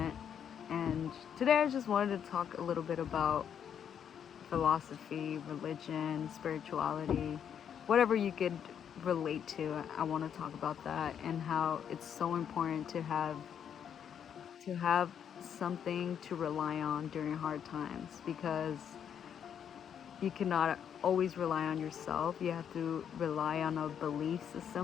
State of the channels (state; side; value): quieter; right; 8.4 dB